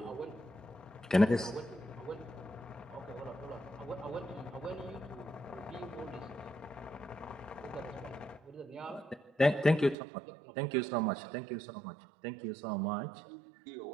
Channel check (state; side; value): drops out; left; at 10.0 s